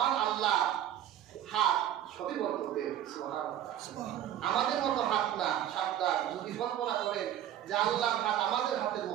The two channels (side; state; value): left; quieter; 11.3 dB